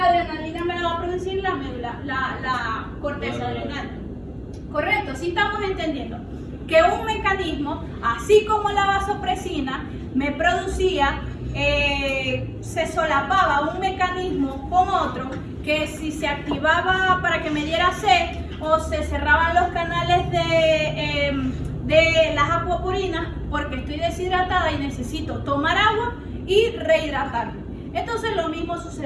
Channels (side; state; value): both; identical; correlation 1.00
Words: adrenalina me la va a producir la médula, la corteza adrenal. Correcto, sí estamos entendiendo que un mecanismo, así como la vasopresina, me producía, se solapaba un mecanismo con otro, que si se activaba para que me diera sed o se cerraban los canales de las acuaporinas porque estoy deshidratada y necesito tomar agua y rehidratarme. Entonces lo mismo